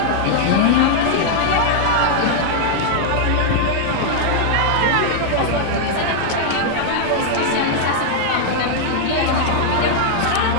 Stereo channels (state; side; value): different; both; correlation -0.01